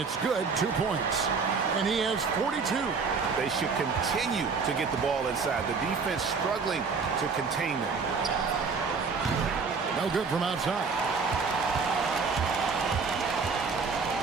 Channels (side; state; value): left; quieter; 5.0 dB